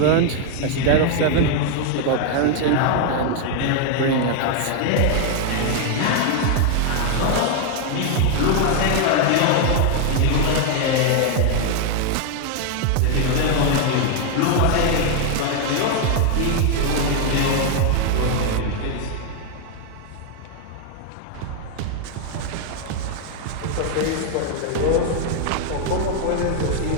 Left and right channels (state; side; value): different; both; correlation 0.00